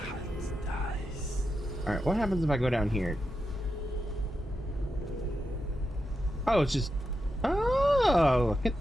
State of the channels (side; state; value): both; normal; correlation 0.88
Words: All right, what happens if I go down here? Oh, it's just. Oh, look